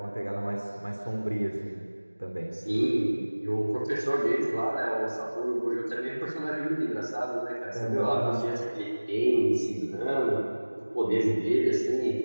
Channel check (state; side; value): inverted; both; correlation -1.00